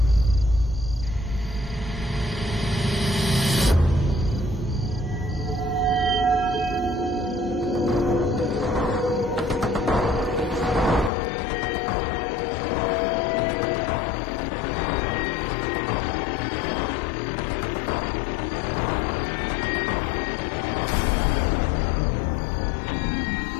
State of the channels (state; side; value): drops out; right; at 11.1 s